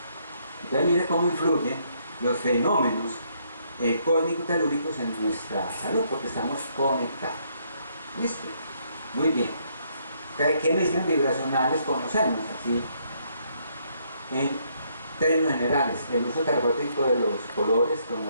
Entonces mire cómo influyen los fenómenos cósmicos telúricos en nuestra salud, porque estamos conectados. ¿Listo? Muy bien. ¿Qué mediciones vibracionales conocemos? Así, en términos generales, el uso terapéutico de los colores,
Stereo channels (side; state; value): both; inverted; correlation -0.71